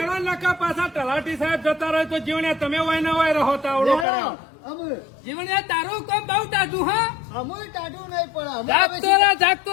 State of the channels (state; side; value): drops out; right; at 4.0 s